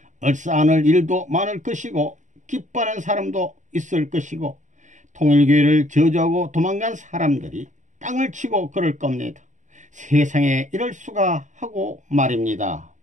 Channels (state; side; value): late; left; 0.36 ms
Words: 얼싸안을 일도 많을 것이고 기뻐하는 사람도 있을 것이고 통일교회를 저주하고 도망간 사람들이 땅을 치고 그럴 겁니다. 세상에 이럴 수가 하고 말입니다.